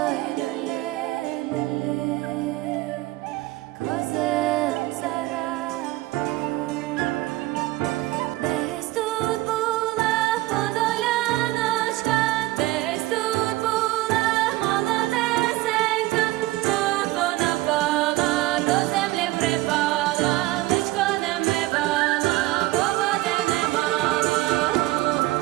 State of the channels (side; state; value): left; quieter; 18.4 dB